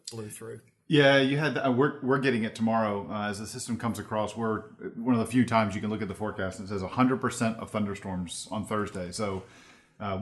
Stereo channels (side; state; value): both; identical; correlation 1.00